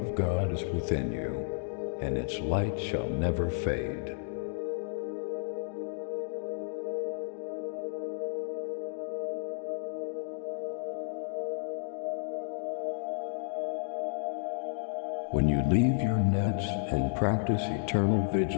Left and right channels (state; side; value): silent; right; digital silence